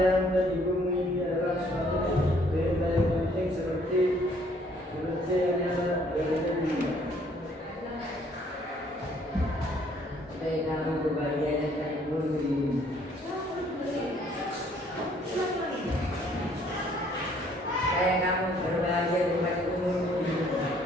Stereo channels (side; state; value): both; normal; correlation 0.62